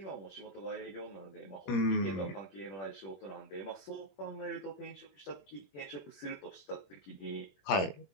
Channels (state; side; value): late; right; 21 ms